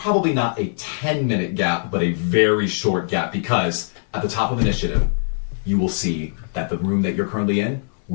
not a 10-minute gap, but a very short gap, because at the top of initiative, you will see that the room that you're currently in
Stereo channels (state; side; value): silent; right; 65 dB below the other